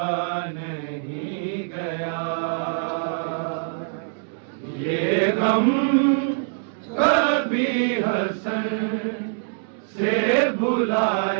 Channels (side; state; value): left; silent; digital silence